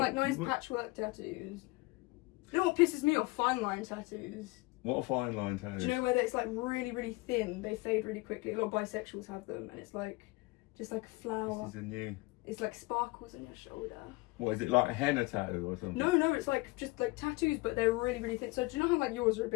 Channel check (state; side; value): quieter; right; 23.5 dB